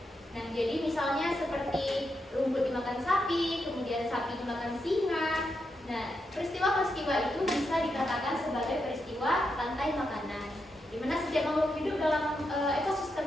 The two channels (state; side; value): normal; both; correlation 0.84